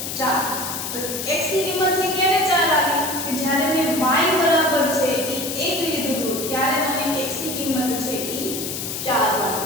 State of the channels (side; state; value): left; noise; hiss, 5 dB below the sound